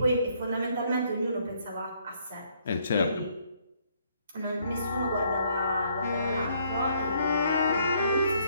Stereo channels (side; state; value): both; inverted; correlation -0.67